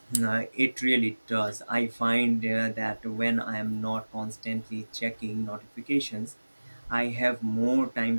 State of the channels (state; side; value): inverted; both; correlation -1.00